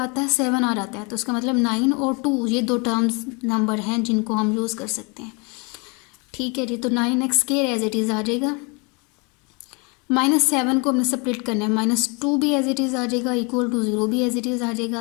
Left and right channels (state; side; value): quieter; right; 31.2 dB